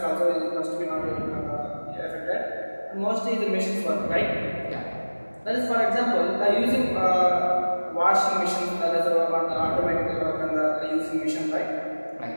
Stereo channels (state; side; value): inverted; both; correlation -1.00